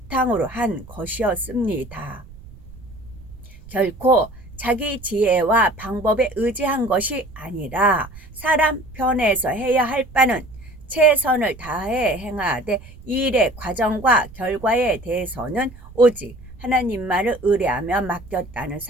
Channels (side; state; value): right; noise; rumble, 19 dB below the sound